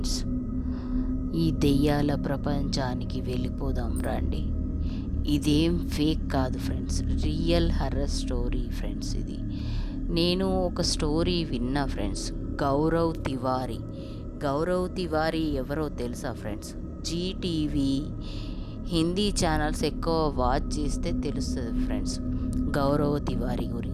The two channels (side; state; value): both; identical; correlation 1.00